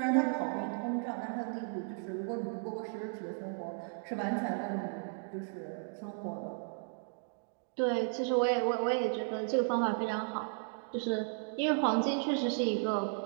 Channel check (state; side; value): silent; left; 55 dB below the other